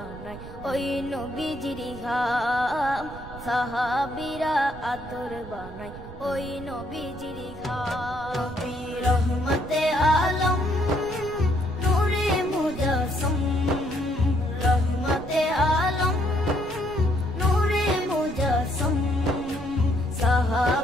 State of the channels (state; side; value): noise; right; rumble, 14 dB below the sound